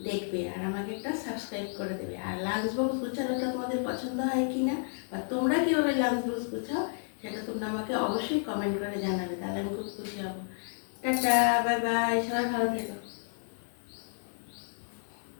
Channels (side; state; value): right; silent; digital silence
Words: দেখবে আর আমাকে একটা সাবস্ক্রাইব করে দেবে। আর লাঞ্চ বক্স গুছানোটা তোমাদের পছন্দ হয় কি না, বা তোমরা কীভাবে লাঞ্চ বক্স গুছাও, সেটা তোমরা আমাকে অবশ্যই কমেন্ট করে জানাবে, তাহলে আমি খুব খুশি হব। টাটা, বাই বাই, সবাই ভালো থেকো।